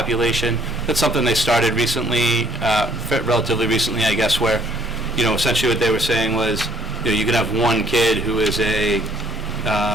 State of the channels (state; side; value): normal; both; correlation 0.61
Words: that's something they started recently, relatively recently, I guess, where, essentially what they were saying was, you can have one kid who is a